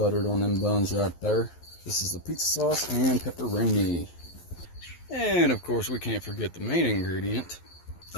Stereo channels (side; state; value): right; late; 11 ms